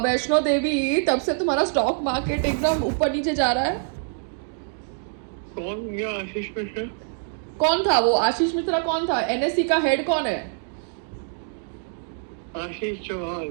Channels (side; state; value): left; silent; 60 dB below the other